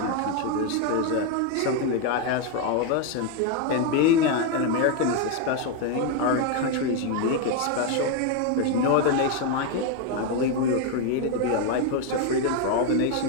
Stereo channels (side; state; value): both; different; correlation 0.02